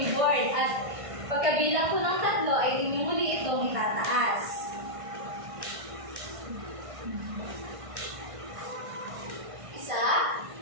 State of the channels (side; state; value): left; late; 1.5 ms